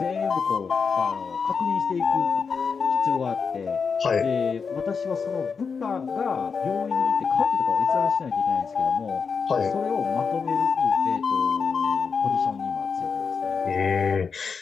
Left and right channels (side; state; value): right; quieter; 5.6 dB